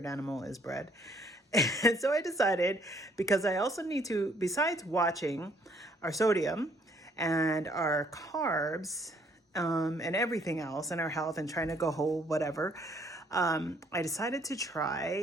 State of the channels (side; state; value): both; normal; correlation 0.64